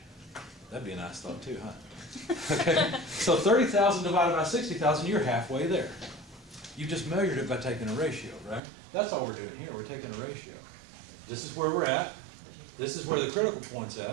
That'd be a nice thought too, huh? Okay. So 30,000 divided by 60,000, you're halfway there. You just measured it by taking a ratio, right? That's all we're doing here. We're taking a ratio. This is where we're at. This is where the critical point's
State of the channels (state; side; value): drops out; left; at 8.6 s